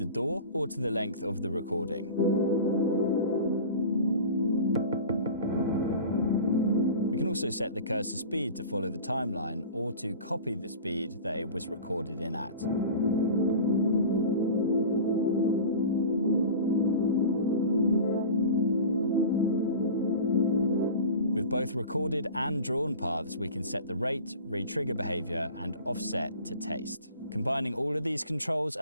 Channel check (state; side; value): inverted; both; correlation -0.37